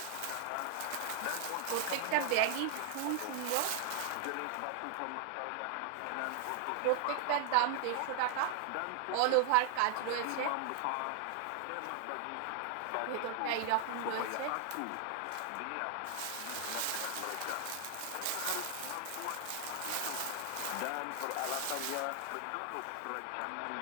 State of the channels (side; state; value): both; different; correlation 0.00